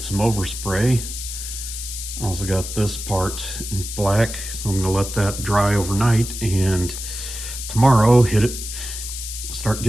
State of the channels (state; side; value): noise; left; hiss, 7 dB below the sound